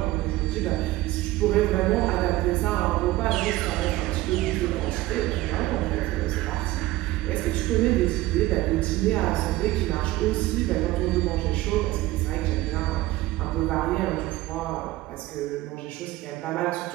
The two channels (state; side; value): quieter; left; 17.6 dB